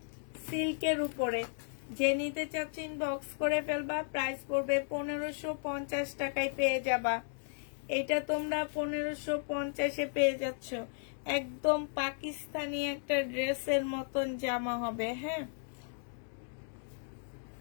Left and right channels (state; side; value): silent; right; digital silence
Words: সিল্কের উপরে। যে নিতে চাচ্ছ ইনবক্স করে ফেলবা, প্রাইস পড়বে 1550 টাকায় পেয়ে যাবা। এটা তোমরা 1550-এ পেয়ে যাচ্ছ। একদম পাকিস্তানি একটা ড্রেসের মতন জামা হবে। হ্যাঁ,